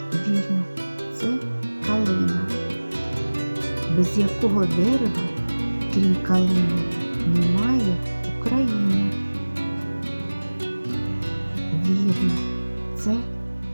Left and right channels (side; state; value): both; inverted; correlation -1.00